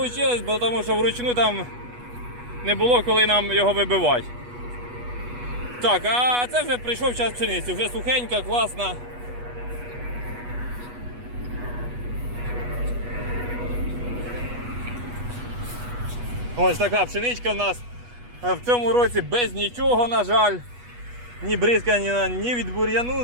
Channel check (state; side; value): late; left; 8.2 ms